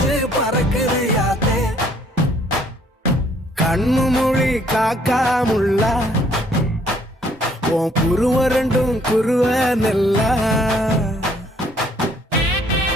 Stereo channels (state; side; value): normal; both; correlation 0.64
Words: பறக்குது யாத்தே கண்ணு மொழி காக்காமுள்ள உன் குருவ ரெண்டும் குருவ நெல்லா